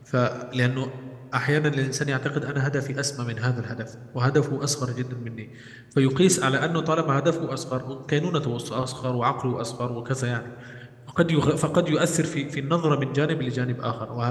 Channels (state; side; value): identical; both; correlation 1.00